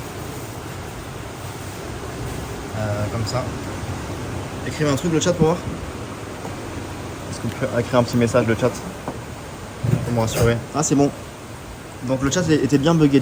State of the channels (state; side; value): identical; both; correlation 1.00